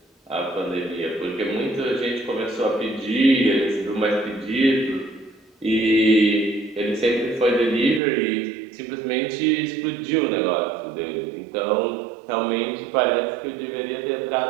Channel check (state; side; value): drops out; left; at 8.0 s